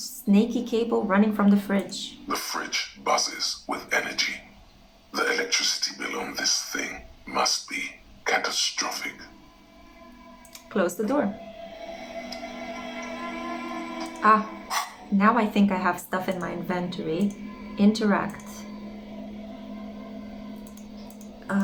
cable running from the fridge. The fridge buzzes with energy. The electricity bill on this thing must be catastrophic. Close the door. Now I think I have stuff in my inventory. Interact.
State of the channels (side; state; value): both; identical; correlation 1.00